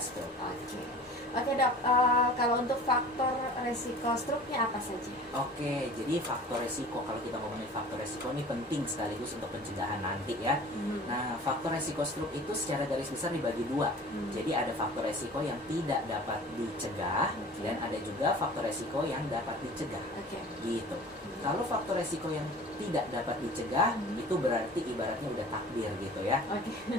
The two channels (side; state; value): both; normal; correlation 0.43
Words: Oke. Oke dok, kalau untuk faktor resiko stroke-nya apa saja? Oke, jadi faktor resiko, kalau kita ngomongin faktor resiko ini penting sekaligus untuk pencegahan nanti ya. Nah, faktor resiko stroke itu secara garis besar dibagi dua. Jadi ada faktor resiko yang tidak dapat dicegah dan ada juga faktor resiko yang dapat dicegah. Oke. Gitu. Kalau faktor resiko yang tidak dapat dicegah itu berarti ibaratnya udah takdir gitu ya. Oke.